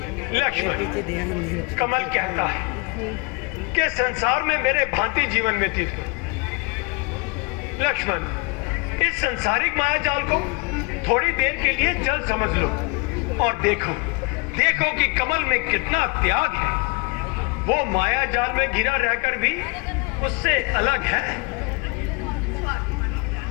लक्ष्मण, कमल कहता है कि संसार में मेरे भांति जीवन व्यतीत हो। लक्ष्मण, इस संसारिक माया जाल को थोड़ी देर के लिए जल समझ लो और देखो कि कमल में कितना त्याग है। वो माया जाल में घिरा रहकर भी उससे अलग है।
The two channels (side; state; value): right; quieter; 29.3 dB